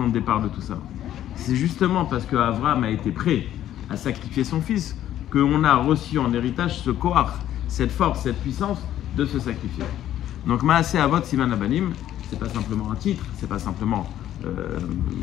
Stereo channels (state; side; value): quieter; right; 12.0 dB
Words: de départ de tout ça. C'est justement parce qu'Abraham a été prêt à sacrifier son fils qu'on a reçu en héritage ce koach, cette force, cette puissance de se sacrifier. Donc Maaseh Avot Siman Abanim, c'est pas simplement un titre, c'est pas simplement